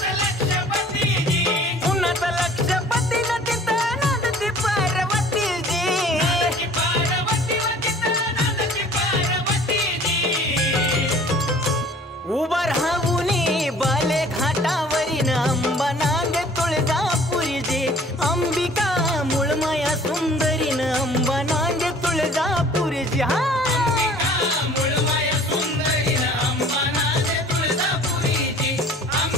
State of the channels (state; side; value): normal; both; correlation 0.50